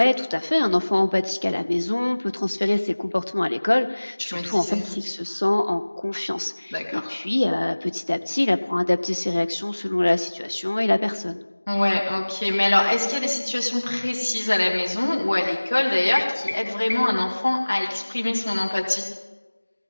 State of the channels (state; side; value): inverted; both; correlation -1.00